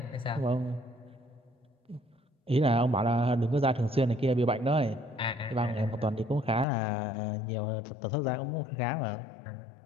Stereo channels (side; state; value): right; drops out; at 6.7 s